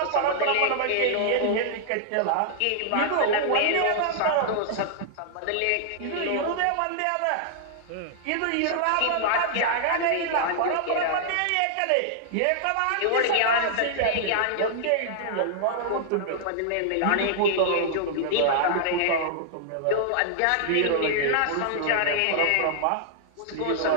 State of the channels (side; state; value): both; different; correlation -0.01